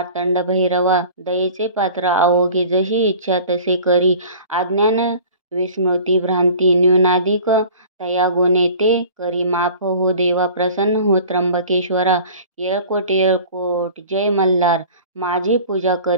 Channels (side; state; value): both; inverted; correlation -0.43